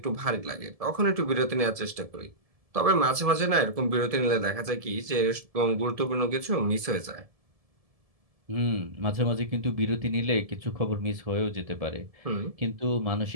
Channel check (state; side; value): late; left; 1.7 ms